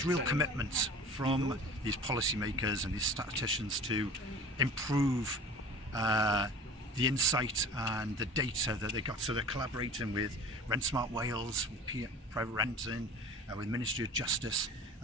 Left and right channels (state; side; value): normal; both; correlation 0.41